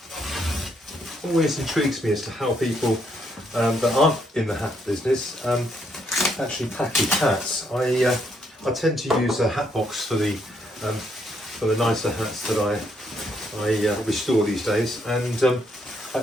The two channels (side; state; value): both; normal; correlation 0.74